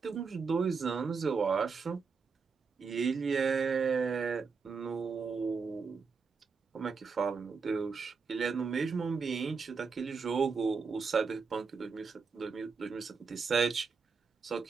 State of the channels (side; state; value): left; quieter; 5.2 dB